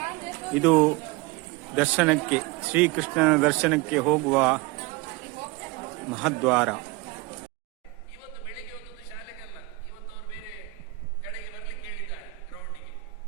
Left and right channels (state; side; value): quieter; left; 21.3 dB